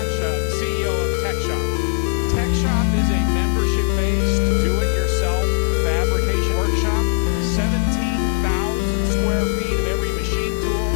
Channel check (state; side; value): silent; right; digital silence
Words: the CEO of TechShop. TechShop is a membership-based, do-it-yourself fabrication workshop. 17,000 square feet of every machine